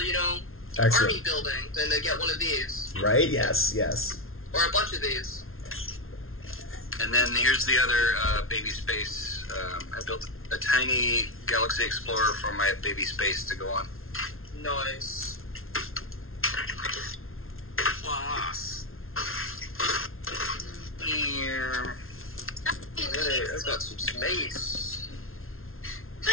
Excellent. army building than to get one of these Right? Yes, yes. or a bunch of these. And then here's the other baby space. I built a tiny Galaxy Explorer for my baby space to go on. Nice. Class. Here. Hey, I've got some space.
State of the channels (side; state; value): right; late; 0.61 ms